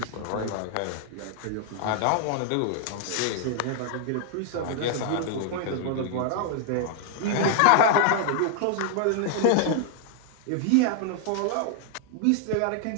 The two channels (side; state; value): both; different; correlation 0.00